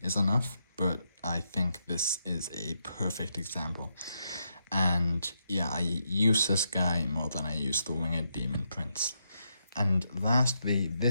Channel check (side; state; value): both; inverted; correlation -0.81